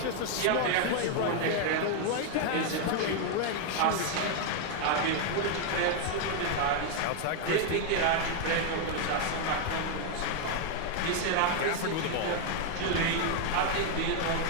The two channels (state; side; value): different; both; correlation 0.01